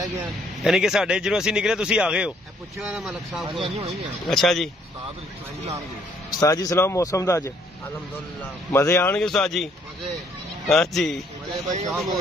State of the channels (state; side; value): normal; both; correlation 0.66